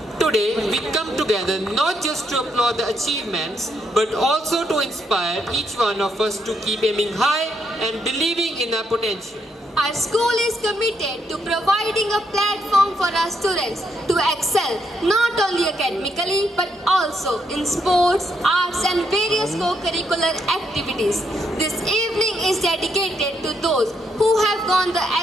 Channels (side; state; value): both; normal; correlation 0.77